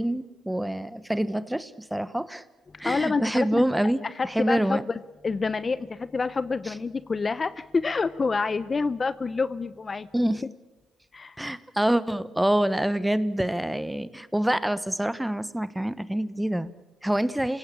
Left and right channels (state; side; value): normal; both; correlation 0.96